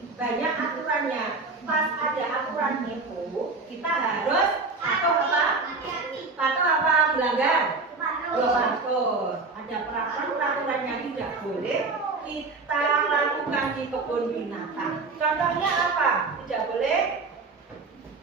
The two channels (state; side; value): quieter; left; 3.8 dB